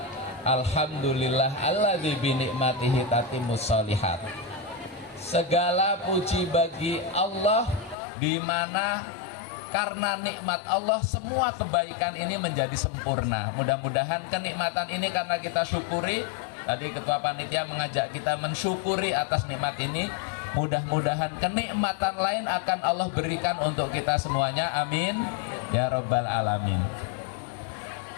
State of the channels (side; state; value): right; drops out; at 8.0 s